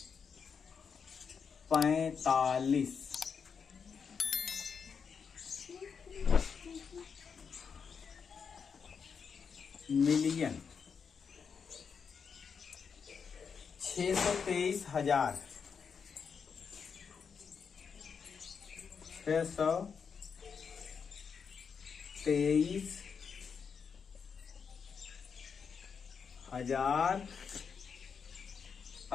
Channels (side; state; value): right; quieter; 6.2 dB